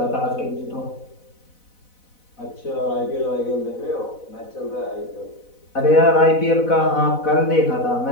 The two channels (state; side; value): late; right; 4.0 ms